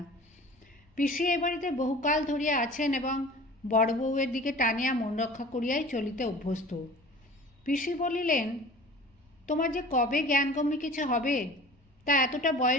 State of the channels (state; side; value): normal; both; correlation 0.42